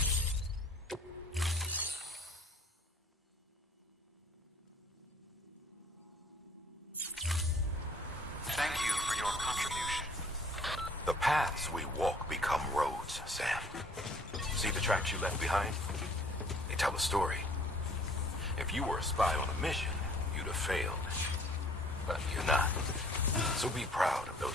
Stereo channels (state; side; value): normal; both; correlation 0.56